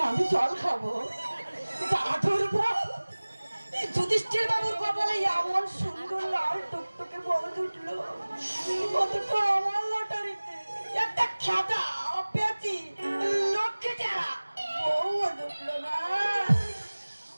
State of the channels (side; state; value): both; inverted; correlation -1.00